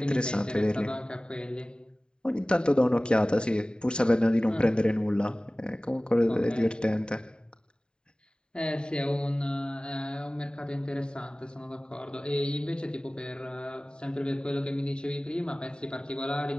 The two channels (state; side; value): late; right; 0.048 ms